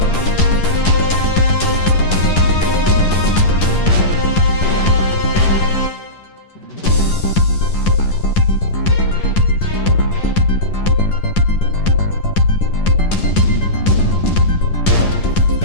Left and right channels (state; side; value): late; right; 10 ms